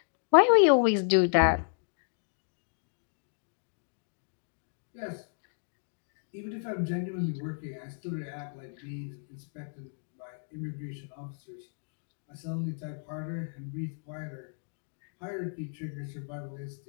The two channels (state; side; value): silent; right; digital silence